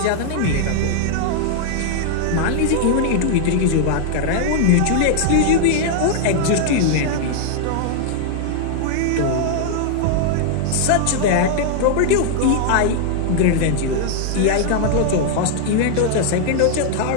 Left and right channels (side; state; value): both; different; correlation -0.01